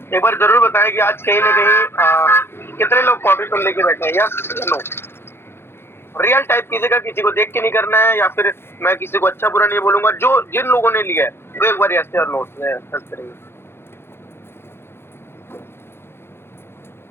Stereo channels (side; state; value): right; late; 0.11 ms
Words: एक बार जरूर बताएं कि आज कहीं ना कहीं कितने लोग कॉपी पेन लेके बैठे हैं। यस नो, रियल टाइप कीजिएगा, किसी को देख के नहीं करना है या फिर मैं किसी को अच्छा बुरा नहीं बोलूंगा। जो जिन लोगों ने लिया है वो एक बार यस और नो करेंगे।